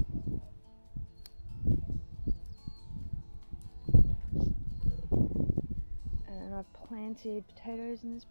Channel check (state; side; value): inverted; both; correlation -1.00